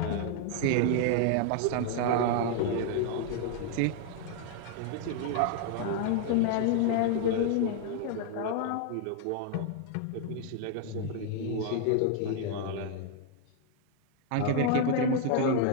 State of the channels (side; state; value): both; different; correlation 0.00